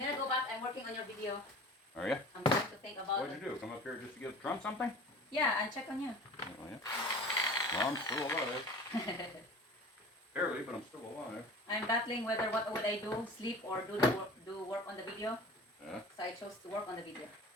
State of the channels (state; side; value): normal; both; correlation 0.40